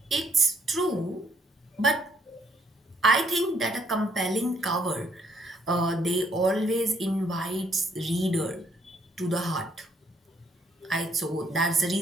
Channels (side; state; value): both; normal; correlation 0.68